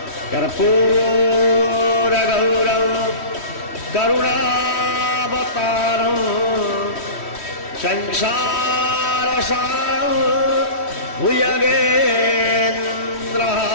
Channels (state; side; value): late; right; 3.1 ms